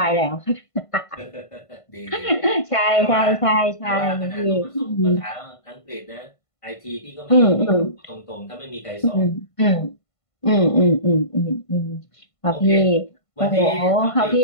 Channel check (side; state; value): right; late; 1.5 ms